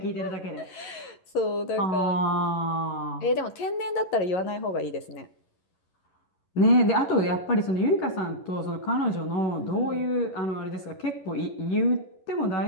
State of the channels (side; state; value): right; late; 11 ms